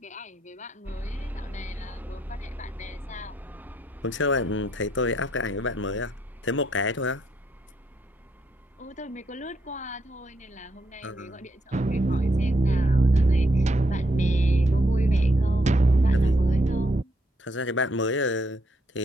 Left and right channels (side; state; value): both; normal; correlation 0.75